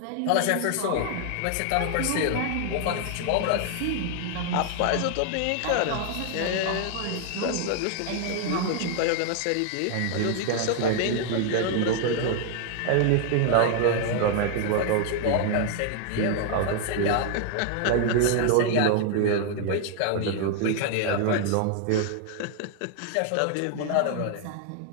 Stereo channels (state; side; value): different; both; correlation 0.00